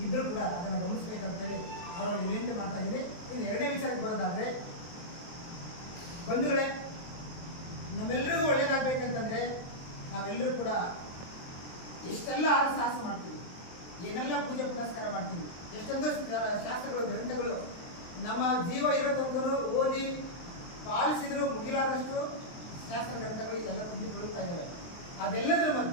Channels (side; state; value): right; late; 23 ms